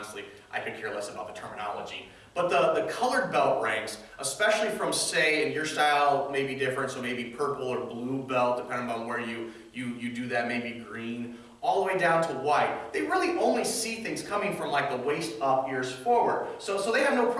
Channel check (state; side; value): identical; both; correlation 1.00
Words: I could care less about the terminology. But the colored belt ranks, especially from, say, and your style may be different, so maybe purple or blue belt, depending on where you do that, maybe green, all the way down to white. They really only see things coming from like the waist up, ears forward. So they have no